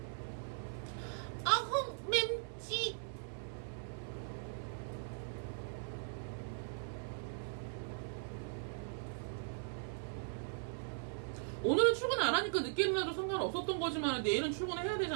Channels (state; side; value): silent; left; 51 dB below the other